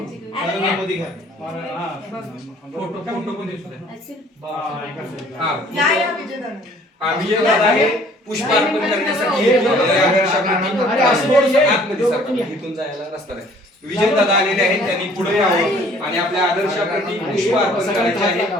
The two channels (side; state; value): both; normal; correlation 0.56